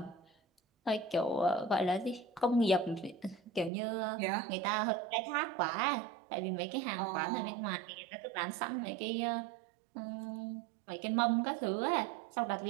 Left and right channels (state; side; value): drops out; left; at 3.7 s